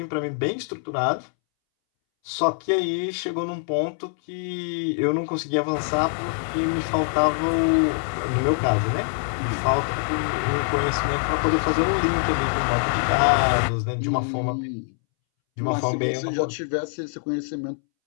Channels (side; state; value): right; silent; 62 dB below the other